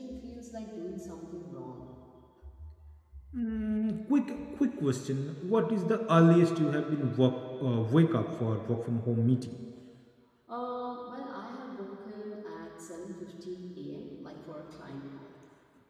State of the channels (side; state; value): both; identical; correlation 1.00